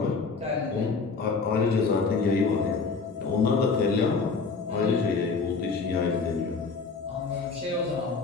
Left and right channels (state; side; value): quieter; right; 4.5 dB